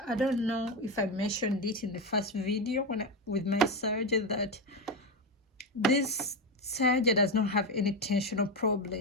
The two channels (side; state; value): both; normal; correlation 0.13